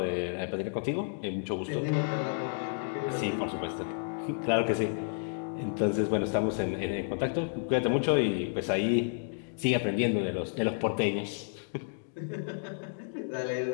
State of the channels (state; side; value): silent; right; digital silence